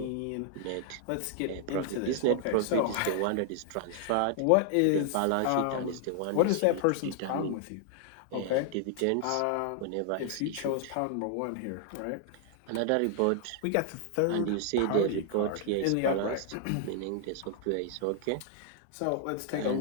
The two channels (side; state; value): both; different; correlation 0.00